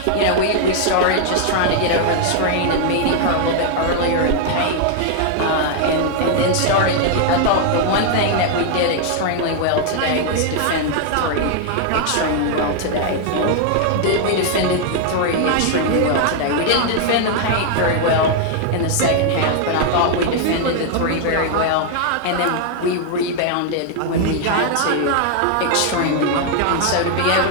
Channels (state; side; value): different; both; correlation 0.00